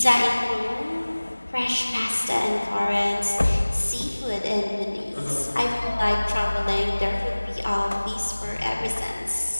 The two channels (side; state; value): both; inverted; correlation -1.00